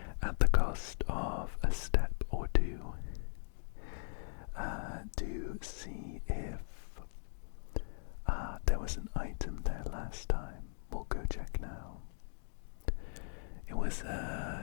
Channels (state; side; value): silent; right; digital silence